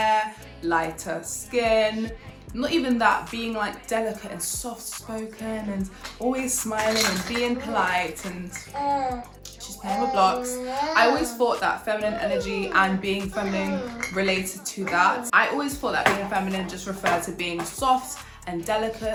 lighter skin. Not even that, being like delicate and soft-spoken and always smiling and being polite, and she's playing with blocks. I always thought that feminine energy and being feminine related to that. I always thought that being feminine just referred to being soft and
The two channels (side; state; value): both; identical; correlation 1.00